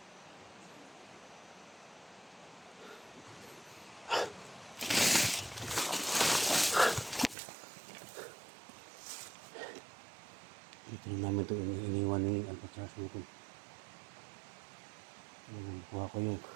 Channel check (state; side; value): drops out; left; at 7.4 s